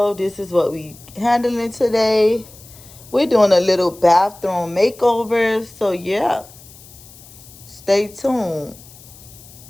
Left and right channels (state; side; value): noise; left; hiss, 21 dB below the sound